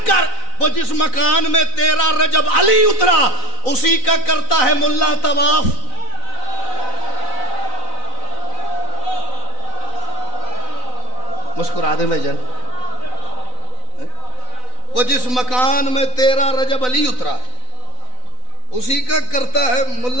کر, وہ جس مکان میں 13 رجب علی اترا اسی کا کرتا ہے ملا طواف. مسکرا دیں بھائی جان. وہ جس مکان میں 13 رجب علی اترا اسی کا کرتا ہے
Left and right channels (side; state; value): right; late; 4.0 ms